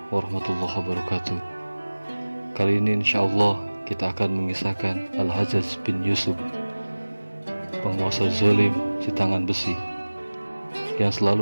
warahmatullahi wabarakatuh. Kali ini insyaallah kita akan mengisahkan Al-Hajjaj bin Yusuf, penguasa zalim si tangan besi yang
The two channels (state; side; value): inverted; both; correlation -1.00